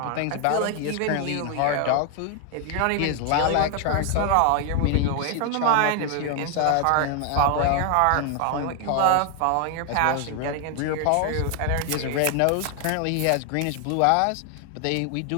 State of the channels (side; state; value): both; different; correlation 0.00